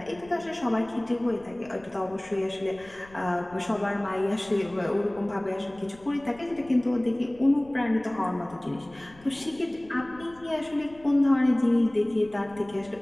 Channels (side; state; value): left; noise; rumble, 24 dB below the sound